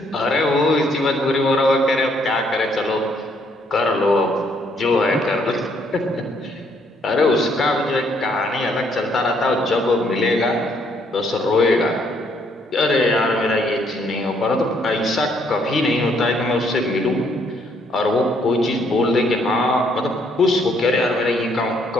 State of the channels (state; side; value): normal; both; correlation 0.69